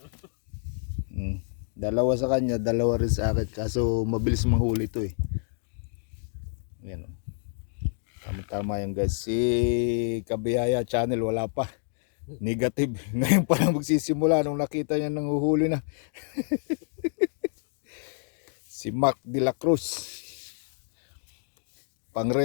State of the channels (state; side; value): silent; right; digital silence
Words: Dalawa sa kanya, dalawa rin sa akin. Kaso mabilis mahuli to eh. Yan o. Tama yan guys. Si Kabiyaya channel wala pa. Negative. Ngayon pa lang magsisimula nung nakita niya nang uhuli na. Si Mac de la Cruz.